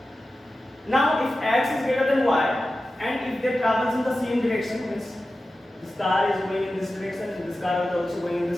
Now, if x is greater than y, and if they travels in the same direction, means this car is going in this direction and this car is also going in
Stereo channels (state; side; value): normal; both; correlation 0.94